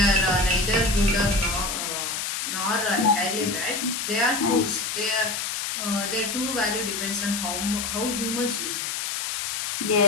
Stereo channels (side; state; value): left; noise; hiss, 3 dB below the sound